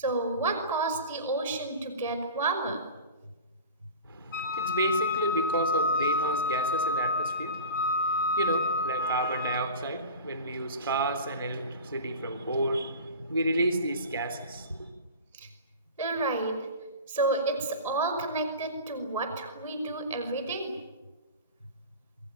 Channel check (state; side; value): inverted; both; correlation -0.34